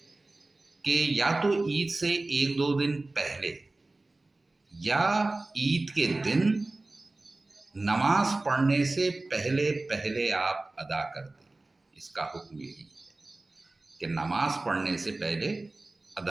کہ یا تو عید سے 1-2 دن پہلے یا عید کے دن نماز پڑھنے سے پہلے پہلے آپ ادا کر دیں۔ اس کا حکم یہی ہے کہ نماز پڑھنے سے پہلے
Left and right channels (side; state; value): left; quieter; 3.0 dB